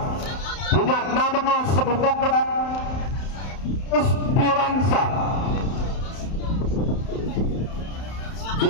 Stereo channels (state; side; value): late; right; 31 ms